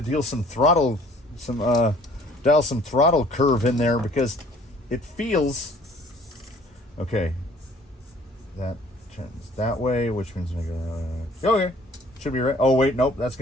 some throttle curve in there because it feels okay. That turns that way, which means I'm gonna okay. Should be right. Oh wait, nope, that's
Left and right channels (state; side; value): normal; both; correlation 0.55